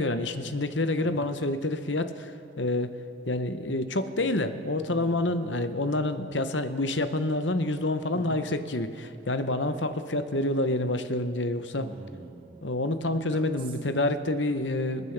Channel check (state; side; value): normal; both; correlation 0.26